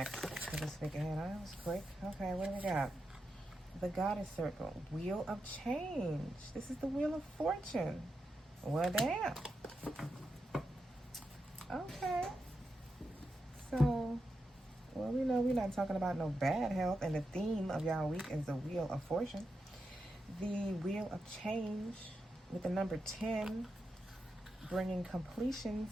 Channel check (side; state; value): both; normal; correlation 0.87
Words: for this week ahead? That was quick. Okay, what do we got? The Goddess Circle. Wheel of Change. This is the Wheel of Fortune. Well, damn. Okay. So, we know we're not talking about no bad health, and the theme of y'all week is the Wheel of Fortune. The Wheel of Change with the number 10, bringing